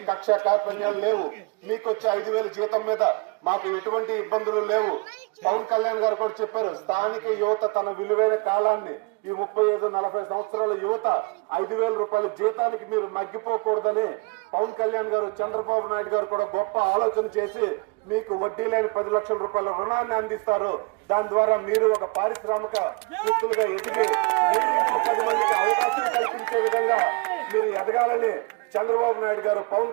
కక్ష కార్పణ్యాలు లేవు. మీకు వచ్చే 5,000 జీతం మీద మాకు ఎటువంటి ఇబ్బందులు లేవు. పవన్ కళ్యాణ్ గారు కూడా చెప్పారు, స్థానిక యువత తన విలువైన కాలాన్ని, ఈ 35-40 సంవత్సరాల యువత 5,000 రూపాయల జీతానికి మీరు మగ్గిపోకూడదని పవన్ కళ్యాణ్ గారు, చంద్రబాబు నాయుడు గారు కూడా గొప్ప ఆలోచన చేసి మీకు వడ్డీ లేని 10 లక్షల రూపాయల రుణాన్ని అందిస్తారు. దాని ద్వారా మీరు ఒక పారిశ్రామిక వ్యక్తులుగా ఎదిగి మీరు ఇంకో 10 మందికి అవకాశం కల్పించే విధంగా మీరు ఎదగాలని చంద్రబాబు నాయుడు గారు, పవన్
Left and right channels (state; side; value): quieter; left; 28.8 dB